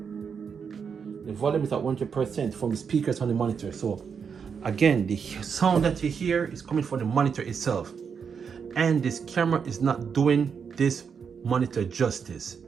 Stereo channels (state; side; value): quieter; left; 6.5 dB